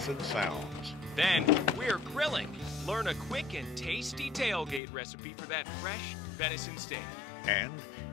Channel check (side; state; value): right; drops out; at 4.8 s